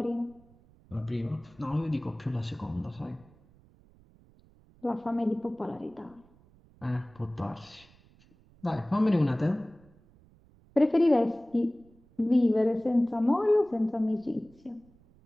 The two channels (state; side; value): noise; right; rumble, 28 dB below the sound